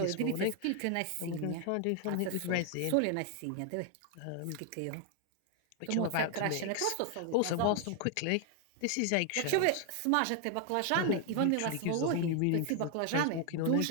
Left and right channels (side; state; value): both; different; correlation 0.00